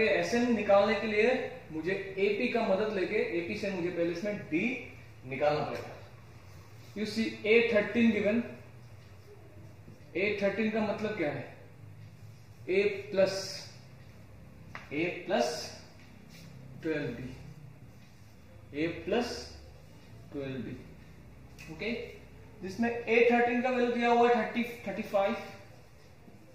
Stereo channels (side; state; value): both; identical; correlation 1.00